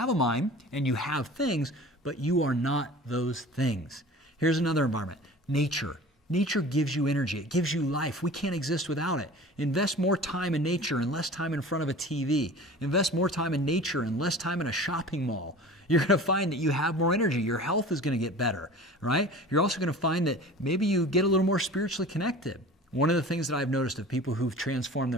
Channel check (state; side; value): normal; both; correlation 0.40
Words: a mind and you have things, but you are not those things. Here's another environment, nature. Nature gives you energy. It gives you life. We can't exist without it. Invest more time in nature and less time in front of a TV. Invest more time in nature and less time in a shopping mall. You're going to find that you have more energy. Your health is going to get better, right? You're also going to find that maybe you get a little more spiritually connected. One of the things that I've noticed of people who've transformed